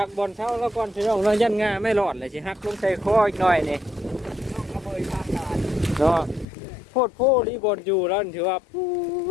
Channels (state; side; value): drops out; right; at 6.5 s